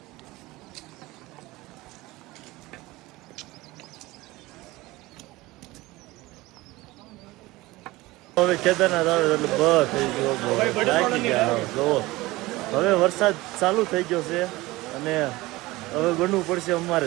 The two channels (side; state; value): left; quieter; 20.0 dB